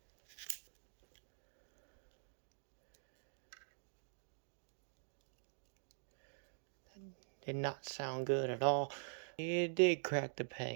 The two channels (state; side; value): silent; left; digital silence